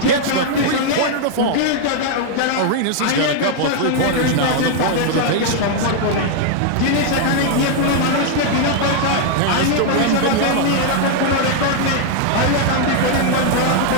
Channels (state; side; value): different; both; correlation 0.00